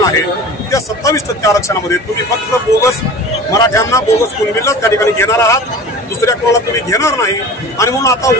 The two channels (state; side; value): normal; both; correlation 0.38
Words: आहे त्या 27% आरक्षणामध्ये तुम्ही फक्त बोगस मराठ्यांना बोगस कुणबीलाच त्या ठिकाणी घेणार आहात, दुसऱ्या कोणाला तुम्ही घेणार नाही. आणि म्हणून आता